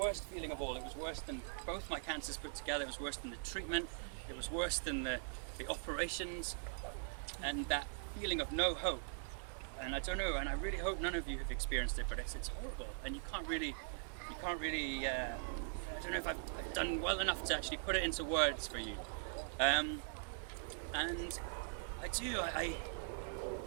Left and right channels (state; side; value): silent; left; digital silence